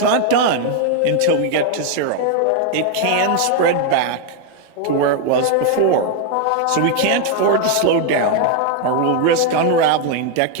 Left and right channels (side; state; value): both; different; correlation 0.01